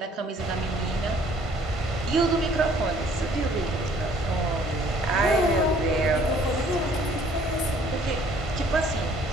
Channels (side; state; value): both; normal; correlation 0.58